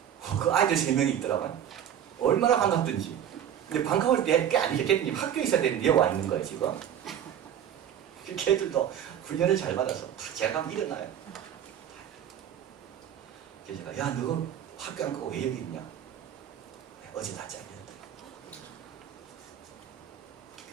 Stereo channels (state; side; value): quieter; left; 9.7 dB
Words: 그 아이들 3명이 있더라고요. 얼마나 반갑든지. 근데 반가울 때 꽤 아니겠니? 학교에 있어야 되는데 와 있는 거예요 지금. 걔들도 훈련을 잘 받아서 다 제가 가면 일어나요. 그래서 제가 야 너 학교 안 가고 왜 여기 있냐? 어제 다 잘렸다.